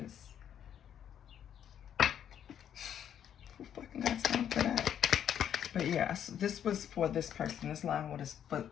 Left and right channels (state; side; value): quieter; right; 9.4 dB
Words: who fucking got time for that? But yeah, this was for this person. This line was for,